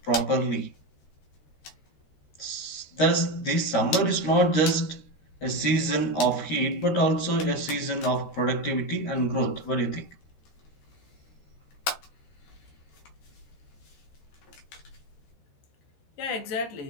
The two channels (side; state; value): right; late; 13 ms